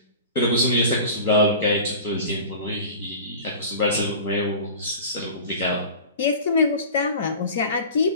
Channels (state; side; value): inverted; both; correlation -0.37